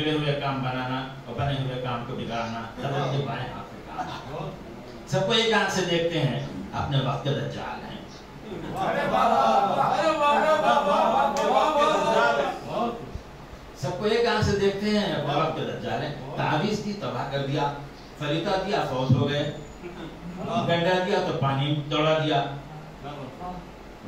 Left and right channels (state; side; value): identical; both; correlation 1.00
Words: ہوئے کام بنانا اور بنے ہوئے کام کو بگاڑنا حضرت کے بائیں ہاتھ میں کام۔ سب کو ایک آنکھ سے دیکھتے ہیں، اپنے وقت کے دجال ہیں۔ سب کو ایک آنکھ سے دیکھتے ہیں، اپنے وقت کے دجال ہیں۔ تعویذ دی تباہ کر دیا، فریتا دیا فوت ہو گئے، گنڈا دیا تو پانی دوڑا دیا،